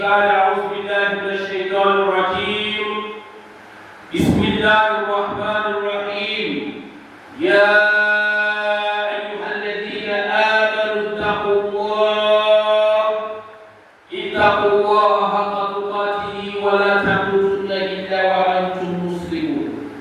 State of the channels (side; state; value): both; identical; correlation 1.00